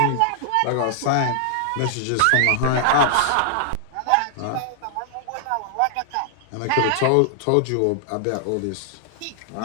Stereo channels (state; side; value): different; both; correlation 0.00